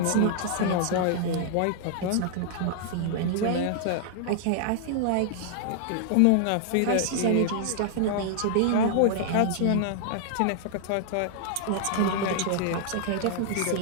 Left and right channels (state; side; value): different; both; correlation -0.01